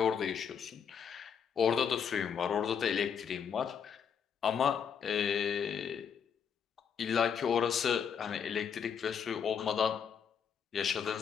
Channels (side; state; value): right; quieter; 7.4 dB